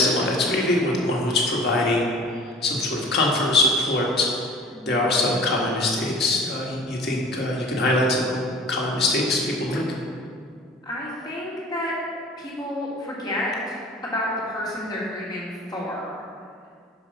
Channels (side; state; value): both; normal; correlation 0.43